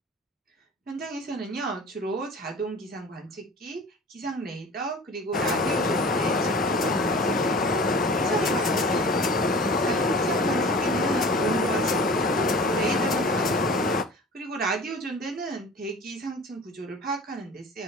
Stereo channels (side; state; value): both; normal; correlation 0.41